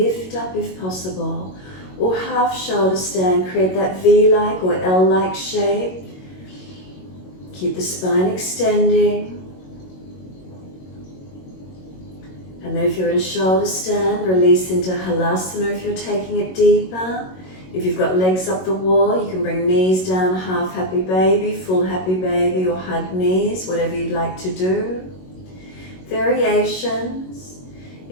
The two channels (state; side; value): late; right; 22 ms